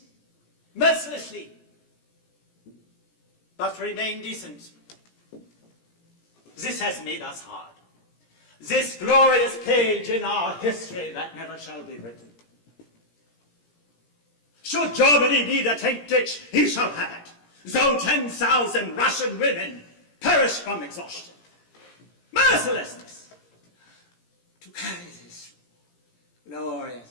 mercilessly, but remain decent. This has made us hard. This glorious page in our history that never shall be written. Should Germany need a tank ditch, he shall have it, though 10,000 Russian women perish from exhaustion. Mercilessness! To carry this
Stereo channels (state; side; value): late; right; 17 ms